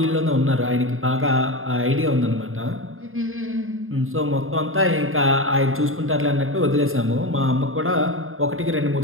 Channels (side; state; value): left; late; 0.60 ms